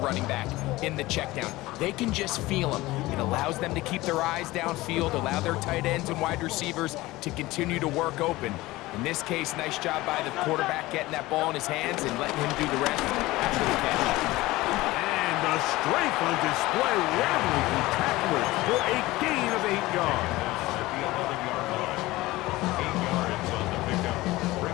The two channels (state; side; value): quieter; right; 19.0 dB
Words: back in the check down. They can just feel him. It allows them to keep their eyes downfield, allow their tight ends and wide receivers to continue to work open. In this case, nice job by the quarterback getting that ball in his hands and letting him do the rest after the catch. And the strength on display, rattling through tacklers for a gain of 8 yards. At the 11-yard line. 8 yards on the pickup.